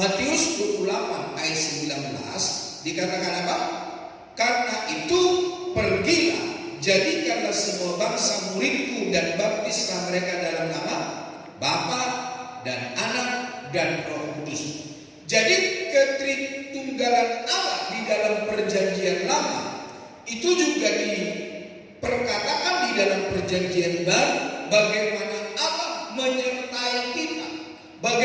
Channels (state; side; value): identical; both; correlation 1.00